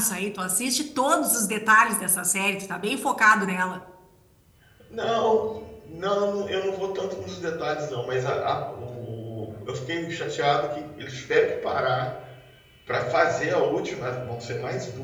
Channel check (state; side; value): identical; both; correlation 1.00